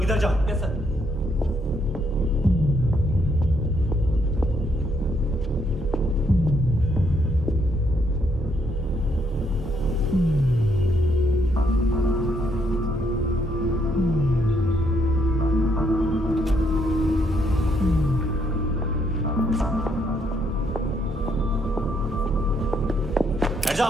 इधर जाओ। Yes sir.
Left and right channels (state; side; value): normal; both; correlation 0.73